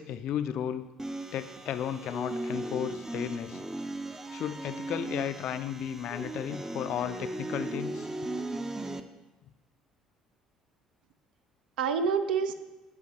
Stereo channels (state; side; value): normal; both; correlation 0.51